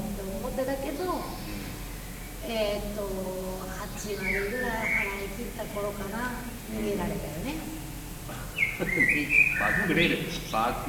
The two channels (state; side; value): identical; both; correlation 1.00